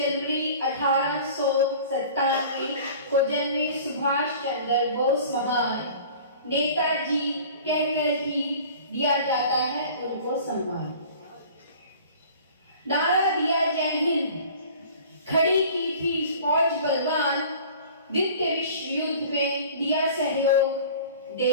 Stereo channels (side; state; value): both; inverted; correlation -0.45